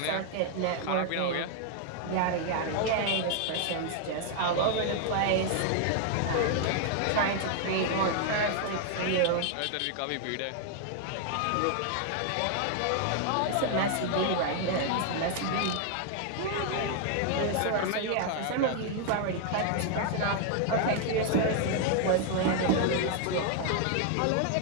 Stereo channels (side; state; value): both; different; correlation 0.00